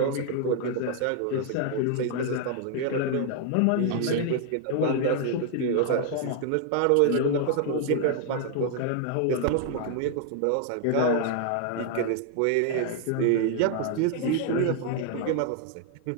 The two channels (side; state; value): both; different; correlation 0.00